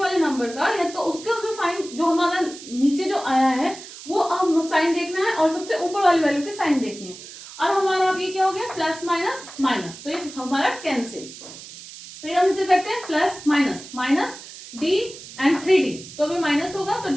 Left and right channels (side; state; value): right; noise; hiss, 15 dB below the sound